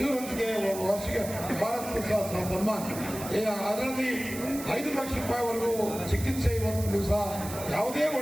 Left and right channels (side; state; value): right; noise; hiss, 11 dB below the sound